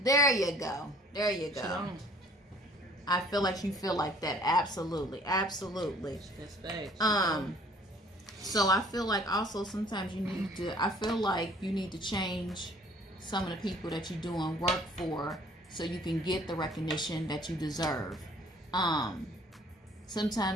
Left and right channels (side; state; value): both; normal; correlation 0.55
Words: There you go. There you go. She don't. I feel like you feel like that. Absolutely. Absolutely. That's facts. So I feel like also sometimes I feel like you need to change some of the people that you're doing work for so you can get the recognition that you deserve.